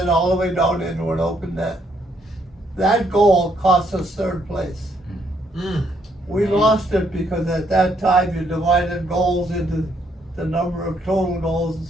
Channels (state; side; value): normal; both; correlation 0.72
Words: all the way down into an open net. that goal cost us third place. Mm. We lost it because at that time you divided goals into the number of total goals and